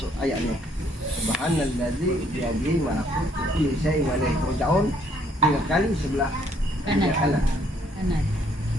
ayat ini, Subhanallazi biyadihi malakutu kulli syai'in wa ilaihi turja'un, 3 kali sebelah kanan.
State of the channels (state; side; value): normal; both; correlation 0.66